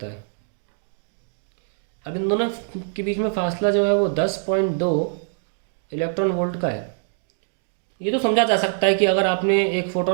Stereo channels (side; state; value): left; silent; digital silence